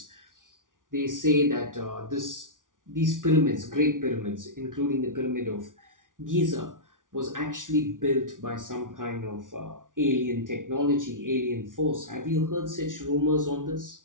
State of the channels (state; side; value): late; left; 0.88 ms